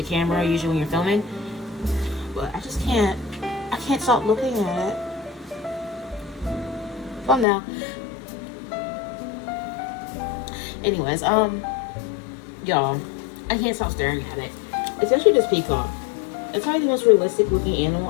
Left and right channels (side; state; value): right; drops out; at 7.5 s